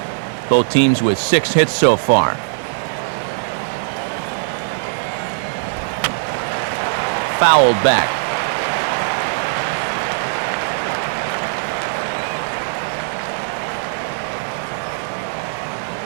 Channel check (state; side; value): silent; left; digital silence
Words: Both teams with 6 hits so far. Fouled back.